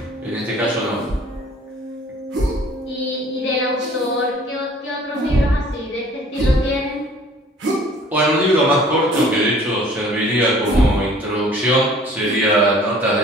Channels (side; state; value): both; normal; correlation 0.52